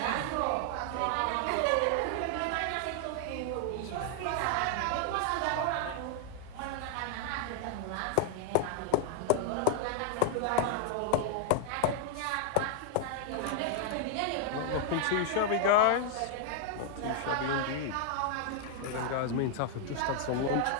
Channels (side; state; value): both; different; correlation 0.00